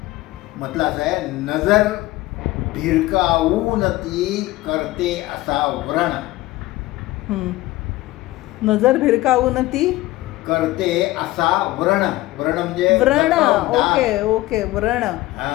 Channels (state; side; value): quieter; right; 18.0 dB